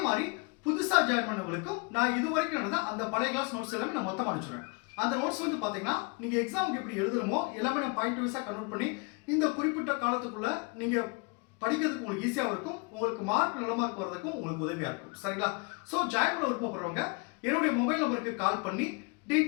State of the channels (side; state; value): right; quieter; 30.7 dB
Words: மாதிரி புதுசா ஜாயின் பண்ணவங்களுக்கும் நான் இதுவரைக்கும் நடந்த அந்த பழைய கிளாஸ் நோட்ஸ் எல்லாமே நான் மொத்தமா அனுப்பிச்சுடுவேன். அந்த நோட்ஸ் வந்து பாத்தீங்கன்னா நீங்க எக்ஸாமுக்கு எப்படி எழுதுறமோ எல்லாமே நான் பாயிண்ட் வைஸா கன்வெர்ட் பண்ணி இந்த குறிப்பிட்ட காலத்துக்குள்ள நீங்க படிக்கிறதுக்கு உங்களுக்கு ஈஸியா இருக்கும். உங்களுக்கு மார்க் நல்ல மார்க் வரதுக்கும் உங்களுக்கு உதவியா இருக்கும். சரிங்களா? சோ ஜாயின் பண்ண விருப்பப்படுறவங்க என்னுடைய மொபைல் நம்பருக்கு கால் பண்ணி